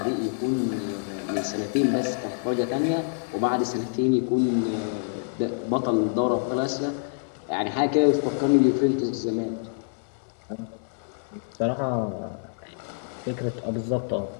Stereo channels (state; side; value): silent; right; digital silence